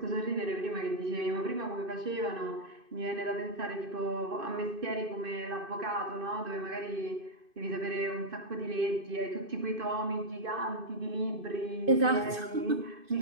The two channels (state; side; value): late; left; 2.5 ms